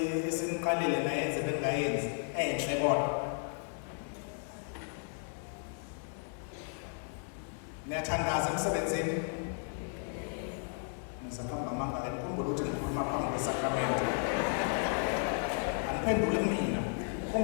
eseniqalele nayenze bengayenzi enhle kodwa. Niyathandaza emsebenzini? Ngizakhamba amanga la ngikhumbula ukuthi ngikhuluma phambi kwesakramento. Angiphendule kumina.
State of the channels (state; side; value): silent; right; 55 dB below the other